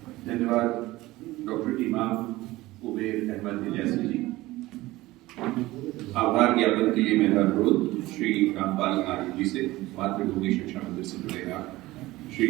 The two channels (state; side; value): quieter; left; 18.4 dB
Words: धन्यवाद डॉक्टर इमाम उबैर अहमद इलियासी जी। आभार ज्ञापन के लिए मेरा अनुरोध श्री रामपाल आर्य जी से, मातृभूमि शिक्षा मंदिर से जुड़े श्री